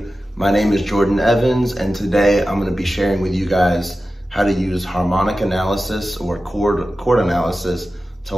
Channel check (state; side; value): normal; both; correlation 0.94